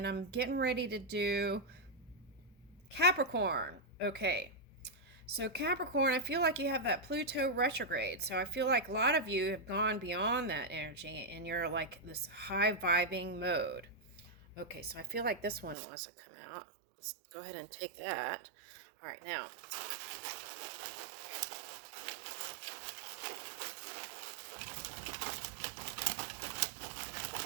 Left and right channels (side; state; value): left; drops out; at 15.8 s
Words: I'm getting ready to do Capricorn. Okay. So Capricorn, I feel like you have that Pluto retrograde. So I feel like a lot of you have gone beyond that energy and you're like this high vibing mode. Okay, so I feel like this one wants to come out. Let's go ahead and take that. All right, now